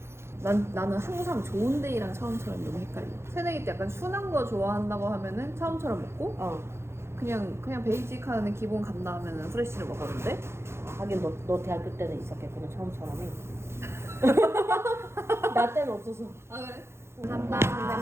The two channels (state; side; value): late; left; 0.12 ms